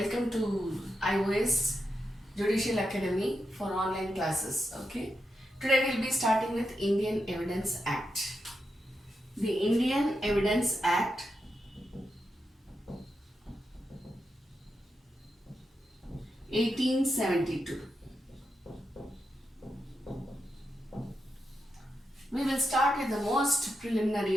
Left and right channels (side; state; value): both; normal; correlation 0.86